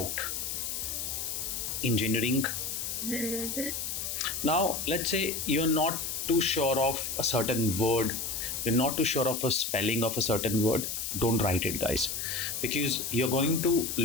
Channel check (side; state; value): left; noise; hiss, 3 dB below the sound